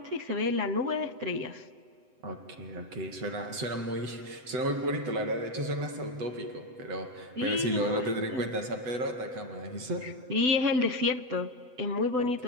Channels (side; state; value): left; late; 7.9 ms